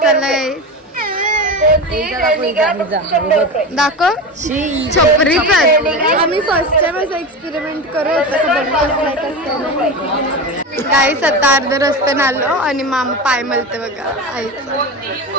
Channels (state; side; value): normal; both; correlation 0.24